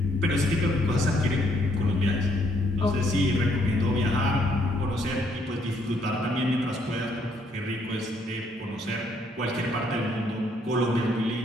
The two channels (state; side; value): normal; both; correlation 0.70